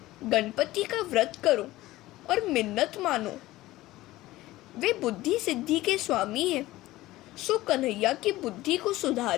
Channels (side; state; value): right; quieter; 17.2 dB